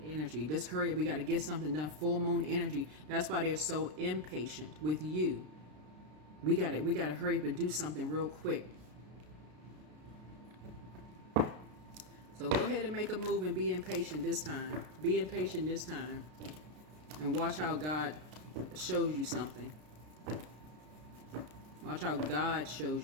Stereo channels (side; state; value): left; late; 33 ms